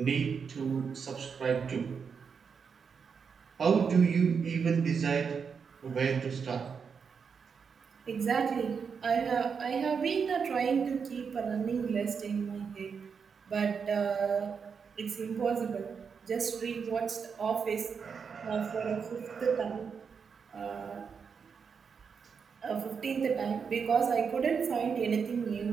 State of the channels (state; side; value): quieter; left; 6.1 dB